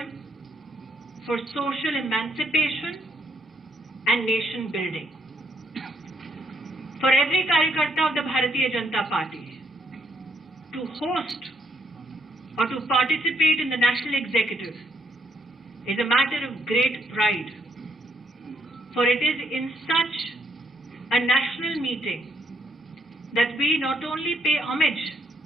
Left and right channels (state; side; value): normal; both; correlation 0.72